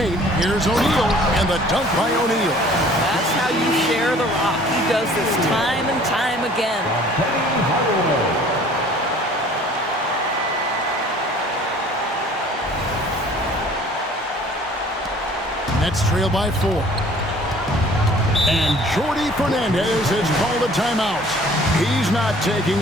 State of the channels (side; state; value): both; normal; correlation 0.52